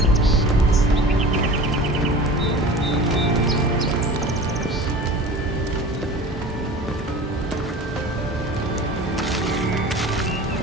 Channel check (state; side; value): normal; both; correlation 0.39